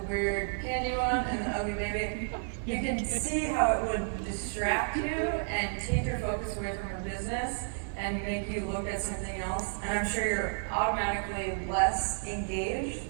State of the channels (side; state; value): left; silent; digital silence